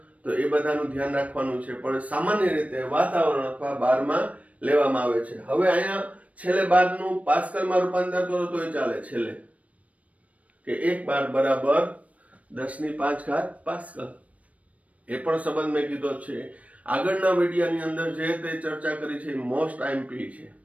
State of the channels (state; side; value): late; left; 0.067 ms